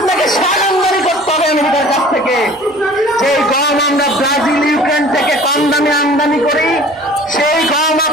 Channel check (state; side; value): normal; both; correlation 0.47